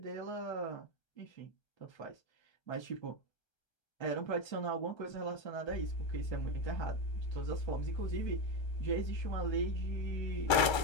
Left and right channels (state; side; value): late; right; 1.3 ms